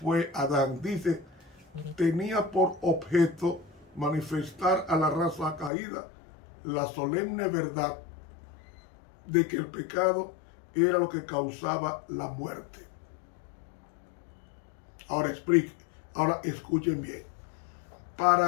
fue Adán. Dice, tenía por objeto manifestar a la raza caída la solemne verdad de que el pecado era lo que causaba la muerte. Ahora escuchen bien.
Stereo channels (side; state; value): right; drops out; at 5.7 s